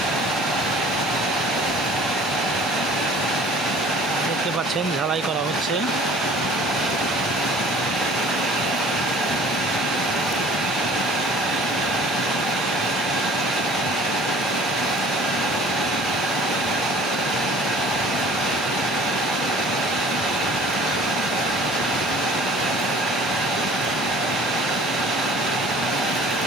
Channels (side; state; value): both; normal; correlation 0.49